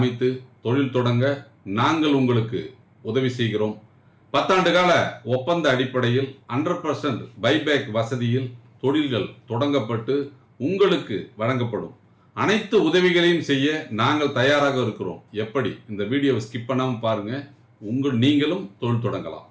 தொழில் தொடங்க நாங்கள் உங்களுக்கு உதவி செய்கிறோம். 10 ஆண்டு கால ஒப்பந்த அடிப்படையில் 100% பைபேக் வசதியில் தொழில்கள் தொடங்கப்பட்டு உங்களுக்கு வழங்கப்படும். அனைத்து உதவிகளையும் செய்ய நாங்கள் தயாராக இருக்கிறோம். எப்படி? இந்த வீடியோவை ஸ்கிப் பண்ணாமல் பாருங்க. நீங்களும் தொழில் தொடங்கலாம்.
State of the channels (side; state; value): both; identical; correlation 1.00